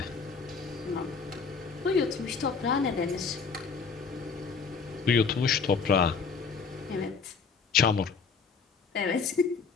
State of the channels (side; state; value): right; quieter; 5.3 dB